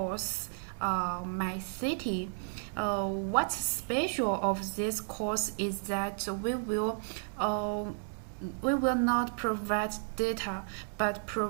my city. What's special of this course is that we will not provide data, but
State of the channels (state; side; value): silent; left; digital silence